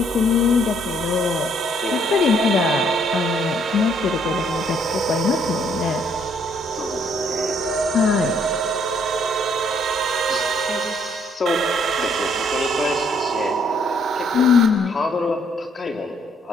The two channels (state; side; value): normal; both; correlation 0.67